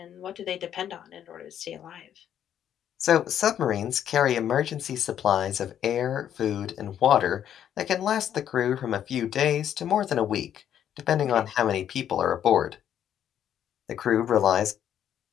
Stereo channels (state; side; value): quieter; right; 10.0 dB